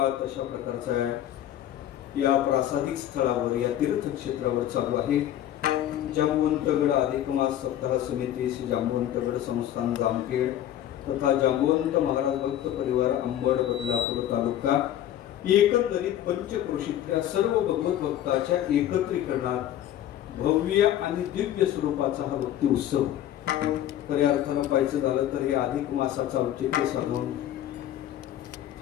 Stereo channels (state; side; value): quieter; right; 11.8 dB